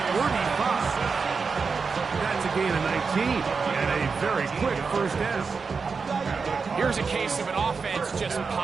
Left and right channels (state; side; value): quieter; left; 5.0 dB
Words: 35. That's a gain of 19 and a very quick first down. Here's a case of an offense just